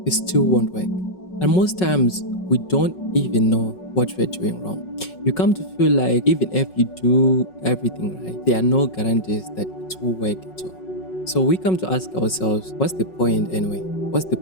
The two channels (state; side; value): late; right; 5.4 ms